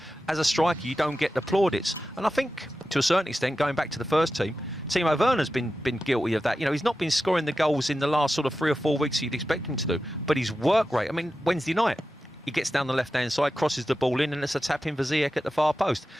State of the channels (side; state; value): both; normal; correlation 0.92